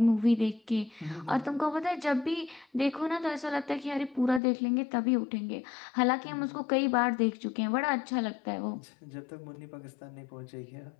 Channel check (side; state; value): right; drops out; at 4.4 s